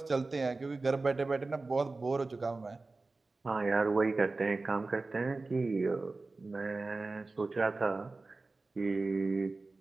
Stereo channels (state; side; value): quieter; left; 3.5 dB